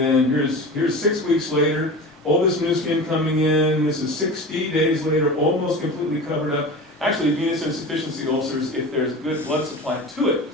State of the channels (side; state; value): both; normal; correlation 0.32